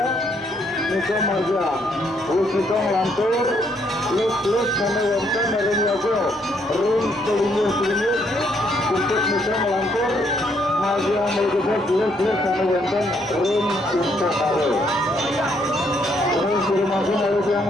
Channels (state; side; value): normal; both; correlation 0.71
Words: Niko Marja, lus itong lantur, lus sama wonton Rin Yago, Rin selinyus, untuk Niko melantur, Marja melegusnya lus sama wonton Rin untuk Karo. Rin suruh masuk harus yang